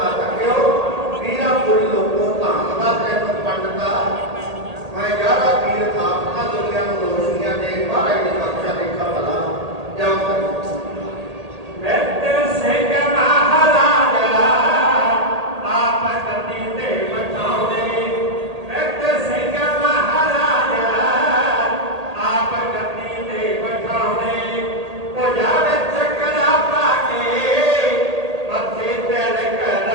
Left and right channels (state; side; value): late; left; 1.8 ms